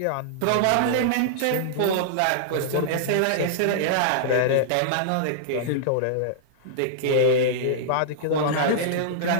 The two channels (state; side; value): different; both; correlation -0.01